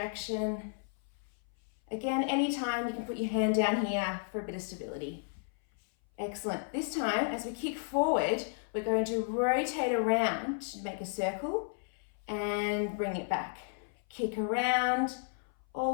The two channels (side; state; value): right; silent; 56 dB below the other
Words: Again, anytime you can put your hand down here for a bit of stability. Excellent. This time, as we kick forward, we're going to rotate around to make a circle and bring it back. Kick around